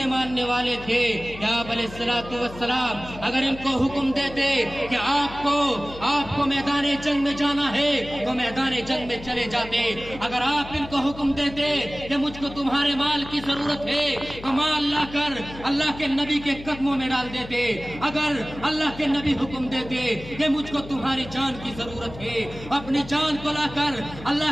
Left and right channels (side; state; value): left; noise; hum, 15 dB below the sound